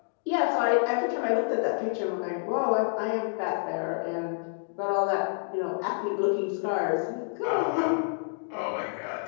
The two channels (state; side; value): silent; right; digital silence